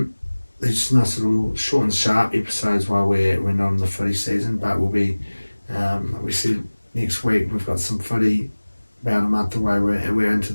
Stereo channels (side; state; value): both; inverted; correlation -1.00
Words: These nice little short and sharp episodes while we're not in the footy season. But we'll be like we said, next week we've got some footy about a month away. We're into